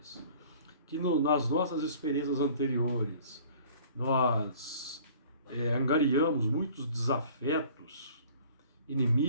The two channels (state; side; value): inverted; both; correlation -0.50